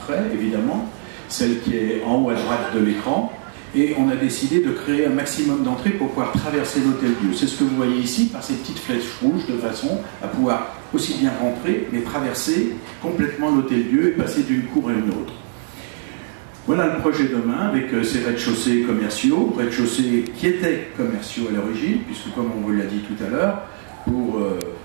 évidemment, celle qui est en haut à droite de l'écran, et on a décidé de créer un maximum d'entrées pour pouvoir traverser l'Hôtel-Dieu. C'est ce que vous voyez ici, par ces petites flèches rouges, de façon à pouvoir aussi bien rentrer, mais traverser complètement l'Hôtel-Dieu et passer d'une cour à une autre. Voilà le projet demain, avec ces rez-de-chaussée commerciaux, rez-de-chaussée qui étaient commerciaux à l'origine, puisque comme on vous l'a dit tout à l'heure, pour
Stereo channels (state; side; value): silent; left; 65 dB below the other